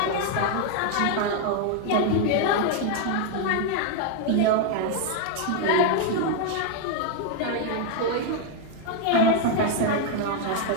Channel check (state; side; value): different; both; correlation 0.00